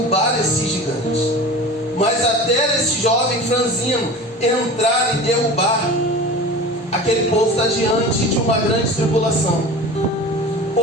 esses gigantes. Mas até esse jovem franzino entrar e derrubar, aquele povo está diante de uma grande tribulação.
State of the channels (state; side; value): normal; both; correlation 0.35